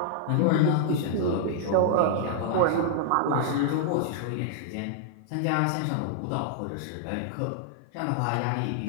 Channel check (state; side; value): different; both; correlation -0.01